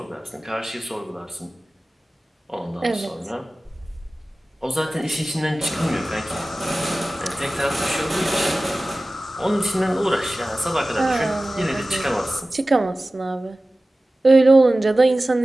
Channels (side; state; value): both; normal; correlation 0.97